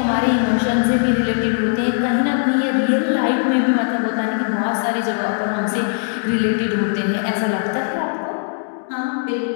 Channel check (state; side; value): silent; right; 66 dB below the other